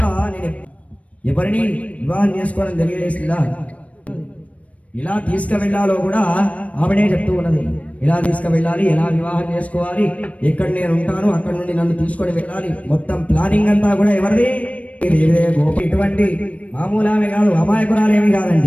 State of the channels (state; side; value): late; right; 0.065 ms